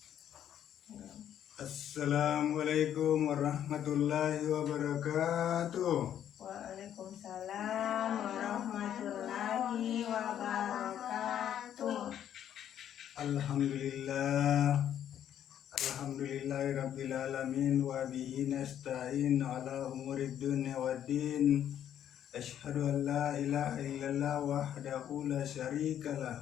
Assalamualaikum warahmatullahi wabarakatuh. Waalaikumsalam warahmatullahi wabarakatuh. Alhamdulillahirabbil alamin wa bihi nasta'in ala umurid dunya waddin. Asyhadu an la ilaha illallah wahdahu la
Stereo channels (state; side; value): quieter; right; 10.2 dB